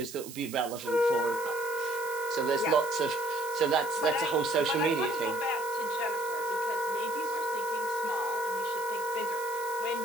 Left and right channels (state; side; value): noise; right; hiss, 13 dB below the sound